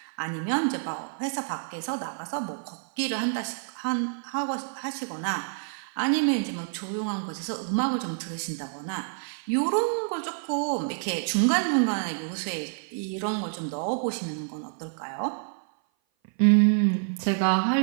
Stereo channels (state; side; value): silent; left; 56 dB below the other